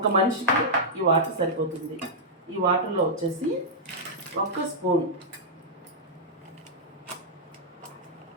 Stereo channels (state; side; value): normal; both; correlation -0.08